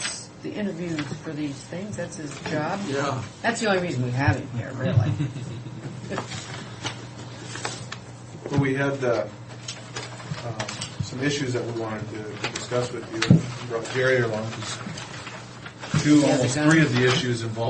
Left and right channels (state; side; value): identical; both; correlation 1.00